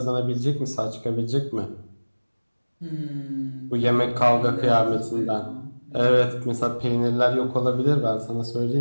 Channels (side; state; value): both; inverted; correlation -1.00